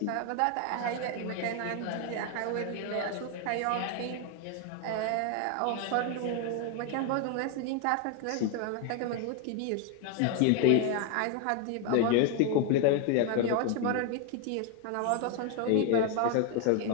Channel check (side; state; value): both; different; correlation 0.01